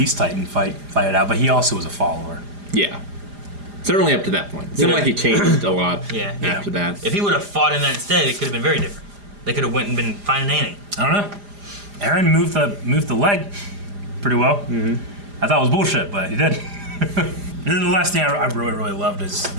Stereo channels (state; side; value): late; left; 4.9 ms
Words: Titan fight it out, but he also was a follower. Yeah. Certainly up to that point. It seemed like he changed a lot Yeah. after that. If he would have fought in that instead, it could have been very different. They could have went and been finding Annie. I don't know. Aaron moved the leg pretty well. Mm-hmm. I thought it was bullshit, but he did. And then the last thing I really, really loved is